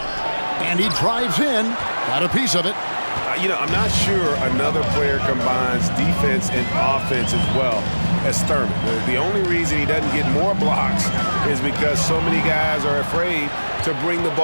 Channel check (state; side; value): inverted; both; correlation -1.00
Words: And he drives in. Got a piece of it. I'm not sure another player combines defense and offense as well as Thurman. The only reason he doesn't get more blocks is because so many guys are afraid to bring the